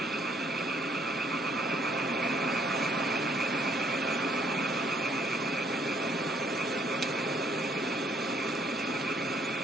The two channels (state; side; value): normal; both; correlation 0.65